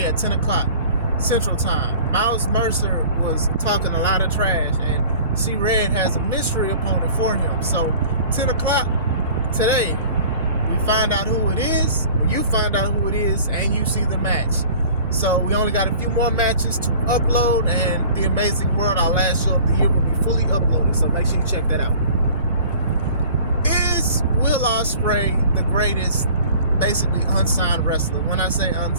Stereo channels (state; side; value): inverted; both; correlation -0.46